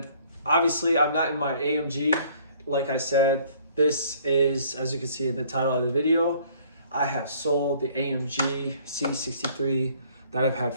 obviously I'm not in my AMG. Like I said, this is, as you can see in the title of the video, I have sold the AMG C63 that I've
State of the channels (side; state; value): both; inverted; correlation -0.58